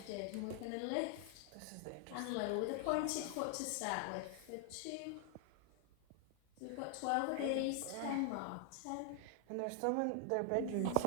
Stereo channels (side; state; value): both; different; correlation 0.00